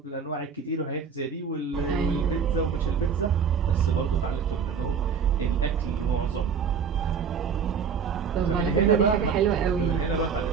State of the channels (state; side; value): quieter; left; 6.4 dB